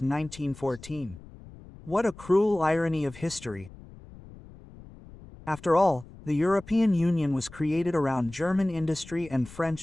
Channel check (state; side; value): noise; left; rumble, 19 dB below the sound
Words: What a cruel irony of history. After all, the European Union was created around German industry and